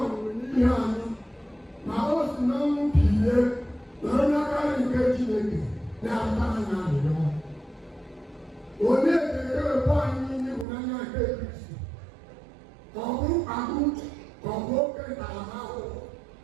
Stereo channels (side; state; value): left; drops out; at 10.7 s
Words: n'ihe anyị, ma o si na ọnwụ bilie nọrọ n'aka nke Chineke na-ata anyị arịrịọ. Onye ga-ewepụ anyị n'ịhụnanya nke Kristi? Ka ọ bụ mkpagbu, ka ọ bụ oke ntaramahụhụ,